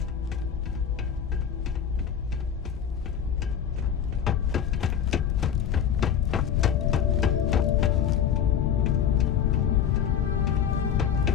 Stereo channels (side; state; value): right; quieter; 8.5 dB